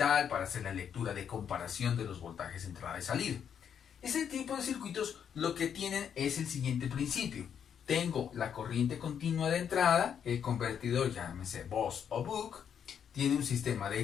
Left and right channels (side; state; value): right; quieter; 8.1 dB